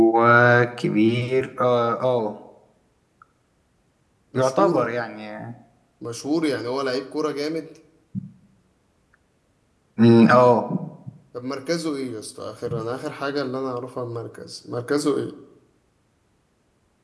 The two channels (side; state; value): both; identical; correlation 1.00